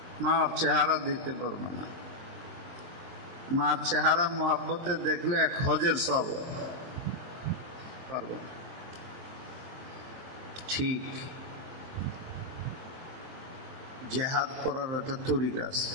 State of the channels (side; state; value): left; late; 23 ms